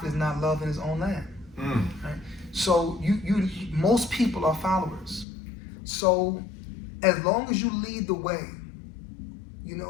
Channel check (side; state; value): right; drops out; at 5.2 s